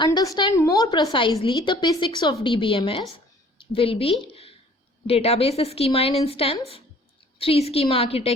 more precisely the basics of DBMS will be database schema and instance, 3-schema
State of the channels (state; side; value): normal; both; correlation 0.54